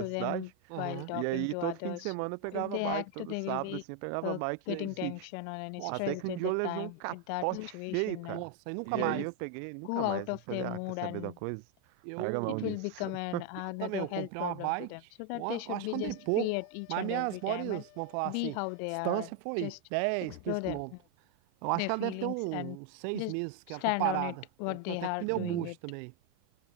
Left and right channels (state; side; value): different; both; correlation 0.01